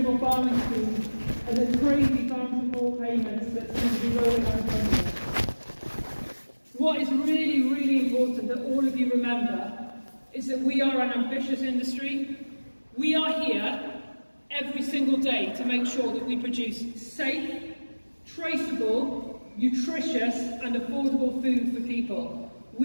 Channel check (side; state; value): both; inverted; correlation -1.00